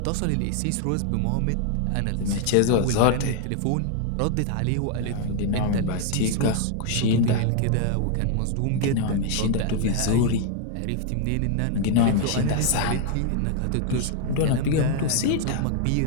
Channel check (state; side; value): different; both; correlation 0.00